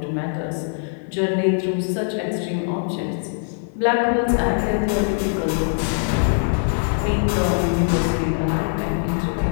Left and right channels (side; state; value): right; silent; 55 dB below the other